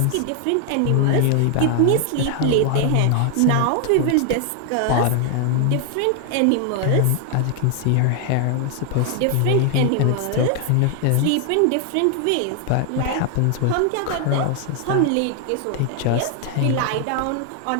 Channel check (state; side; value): different; both; correlation 0.00